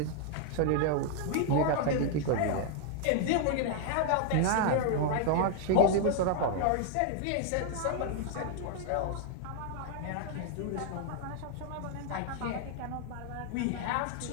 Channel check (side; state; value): both; different; correlation 0.00